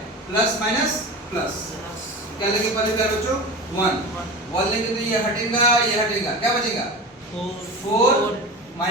प्लस माइनस प्लस। क्या लेंगे पहले प्यारे बच्चों? 1 लेंगे तो ये हटेगा, ये हटेगा, क्या बचेगा? 4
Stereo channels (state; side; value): normal; both; correlation 0.29